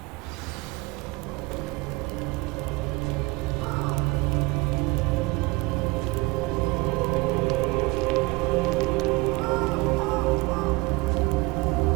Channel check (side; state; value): left; quieter; 23.9 dB